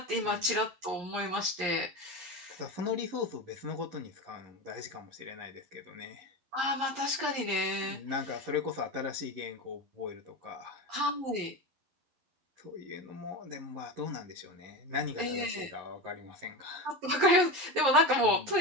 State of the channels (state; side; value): late; left; 11 ms